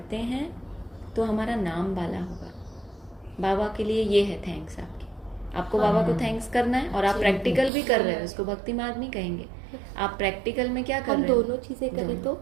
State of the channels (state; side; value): drops out; left; at 7.7 s